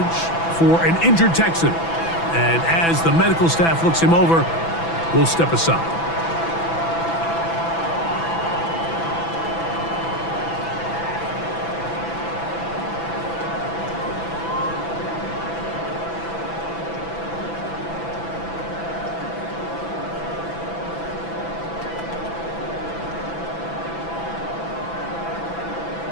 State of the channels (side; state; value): right; late; 6.0 ms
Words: for an injured Texan. And as the medical staff looks him over, we'll step aside.